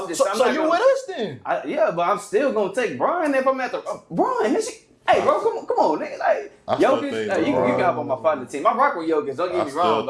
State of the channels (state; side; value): identical; both; correlation 1.00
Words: I'm just. So, I'm so not you gonna- with us then? Yeah, but I'm still gonna take Brian if I'm at the Brian. This shit, hey, bro, come on, nigga. Like I still Jokic, think you LeBron. can hop on my partner team. I rock with Jokic. Don't I get me still wrong,